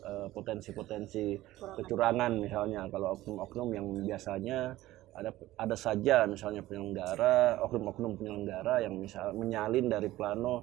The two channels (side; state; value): left; quieter; 16.2 dB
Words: potensi-potensi kecurangan misalnya kalau oknum-oknum yang biasanya ada saja misalnya penyelenggara, oknum-oknum penyelenggara yang misal menyalin dari